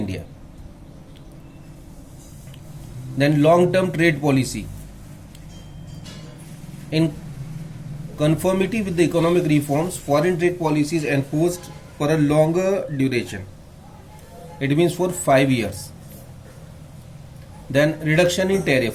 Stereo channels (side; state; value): both; identical; correlation 1.00